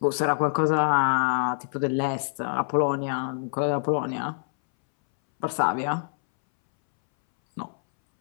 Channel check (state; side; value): silent; right; 61 dB below the other